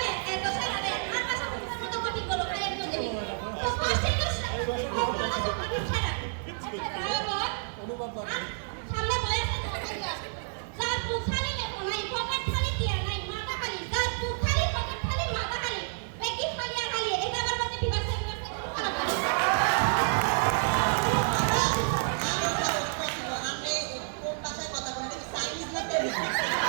এত ছাড়া রে আর ভাষা বুঝার মতো কঠিন বলো খাই একদম দেবি তো কষ্ট করে ছাড়া অনুভব করে সামনে বয়সে যার বুখালি লেখো নাই পকেট খালি দিয়া নাই মাথা খালি যার বুখালি পকেট খালি মাথা খালি বেকি খালি আর খালি এটা আমার মধ্যে বিবাসে খারাপ করে আপনি কোন ভাষায় কথা বলেন চাইনিজ না তেলুগু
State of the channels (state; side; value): silent; left; digital silence